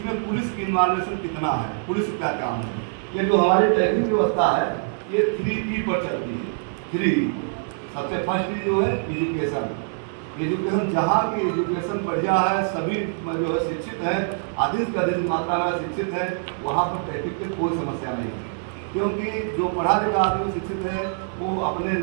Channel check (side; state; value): left; silent; digital silence